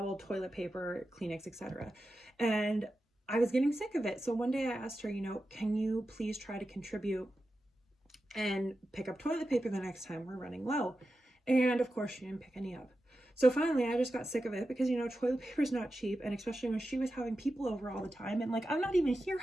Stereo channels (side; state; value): both; normal; correlation 0.91